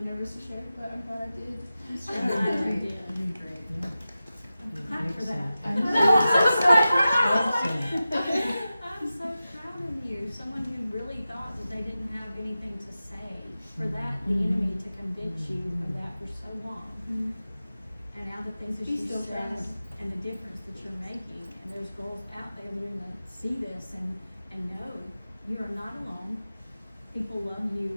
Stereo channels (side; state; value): both; inverted; correlation -0.94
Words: nervous to share, but I'm glad I did. I'm glad you did. You're great, yeah. I'm glad for that. Awesome. I'm so proud of you. Someone who really thought that they didn't have anything to say. For that, the enemy to convince you of that for so long. And now the things that He you still said tries. and the difference that you're making. And there's girls out there that are gonna see this and know you are not alone. People love